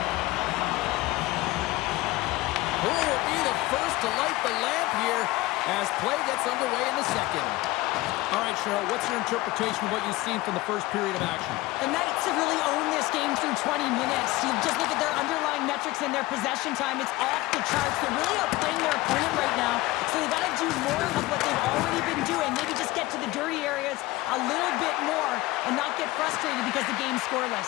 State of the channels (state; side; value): quieter; right; 19.3 dB